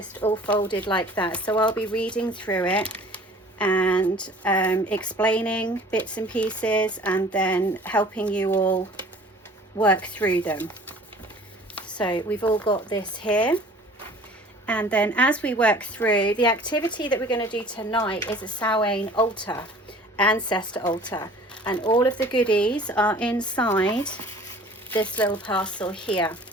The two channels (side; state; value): both; normal; correlation 0.48